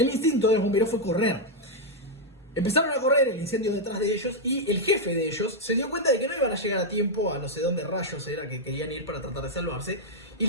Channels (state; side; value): normal; both; correlation -0.01